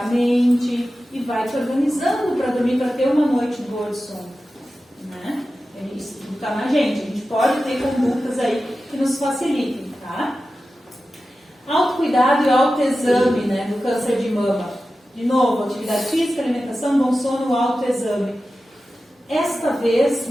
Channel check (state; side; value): normal; both; correlation 0.93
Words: a mente e vai te organizando para dormir, para ter uma noite boa de sono. Né? Isso está na gente. A gente pode ter condutas aí que nos facilitem, tá? Autocuidado e autoexame, né, do câncer de mama. De novo, atividade física, alimentação, bom sono, autoexame. Esta vez,